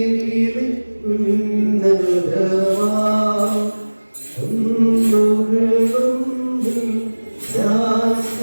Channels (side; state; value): both; inverted; correlation -1.00